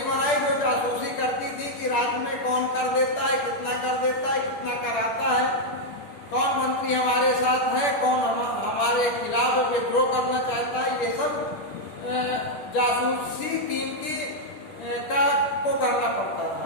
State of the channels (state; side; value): late; right; 10 ms